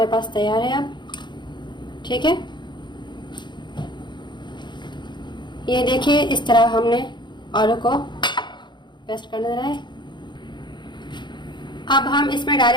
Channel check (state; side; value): late; right; 0.22 ms